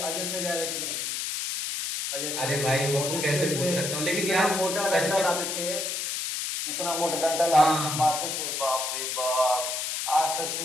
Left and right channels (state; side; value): noise; left; hiss, 2 dB below the sound